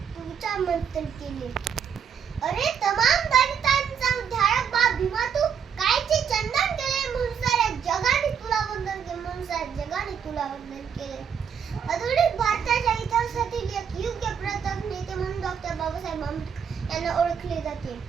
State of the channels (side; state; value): left; quieter; 7.4 dB